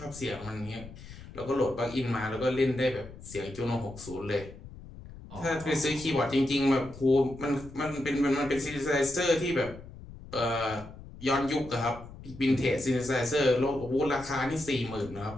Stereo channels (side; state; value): left; noise; rumble, 16 dB below the sound